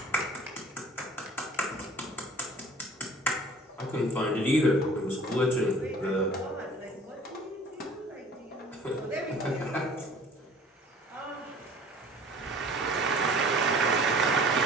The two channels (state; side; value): normal; both; correlation 0.48